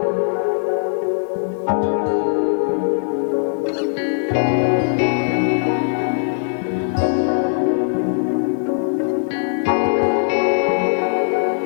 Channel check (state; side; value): silent; right; 66 dB below the other